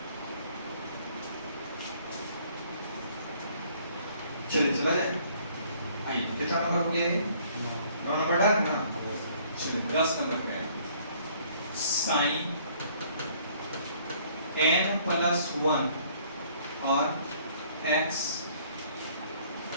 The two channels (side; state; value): both; inverted; correlation -0.60